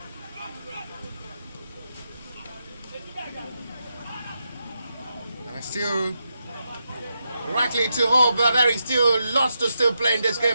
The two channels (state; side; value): inverted; both; correlation -0.85